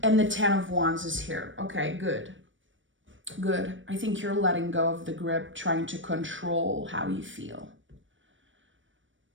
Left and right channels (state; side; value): late; left; 0.56 ms